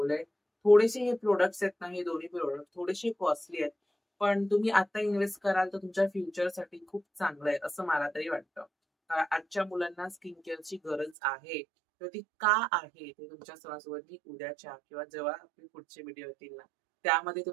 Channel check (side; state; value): left; drops out; at 11.2 s